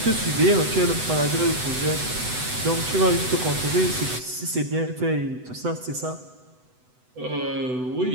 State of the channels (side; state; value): left; late; 8.0 ms